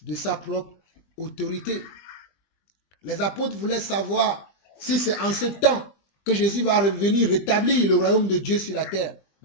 de sa propre autorité. Les apôtres voulaient savoir si c'est en ce temps que Jésus va revenir rétablir le royaume de Dieu sur la terre.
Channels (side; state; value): right; late; 20 ms